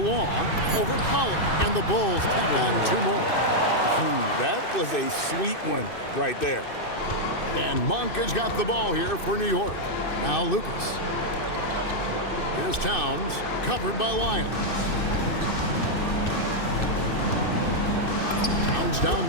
over Pollard. And the Bulls tack on 2 more. That was a sweet one right there. And Monk has got the ball here for New York. Now Lucas. Here's Towns, covered by Lyles. Towns down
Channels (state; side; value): late; right; 2.6 ms